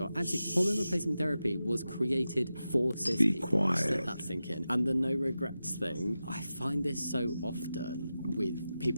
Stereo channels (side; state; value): both; inverted; correlation -0.92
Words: Actually, hormone replacement therapy was created for cis people. Quiet. Let that sink in. And the no regrets thing, I find this so often with